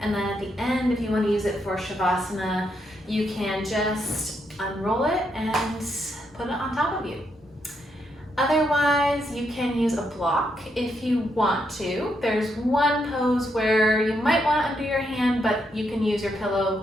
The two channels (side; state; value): both; normal; correlation 0.79